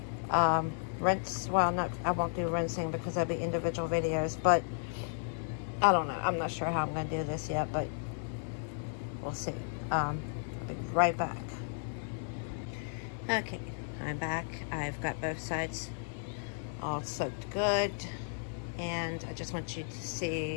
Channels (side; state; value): right; silent; digital silence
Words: rinse. Well, I won't do rinsing because that'll be individual videos, but I don't know. I'm not sure how I'm going to do this yet, but we'll see. I'll be right back. Okay, I'm back. I've got both sides all soaked good, and I just want you to